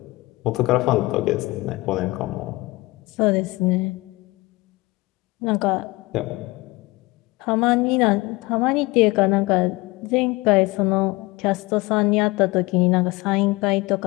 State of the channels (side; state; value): right; quieter; 22.2 dB